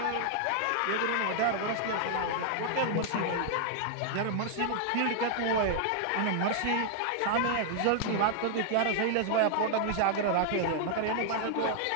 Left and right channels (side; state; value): both; different; correlation 0.00